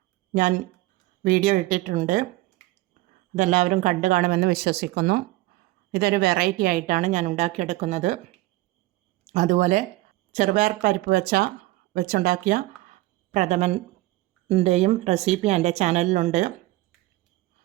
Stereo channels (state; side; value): quieter; left; 18.5 dB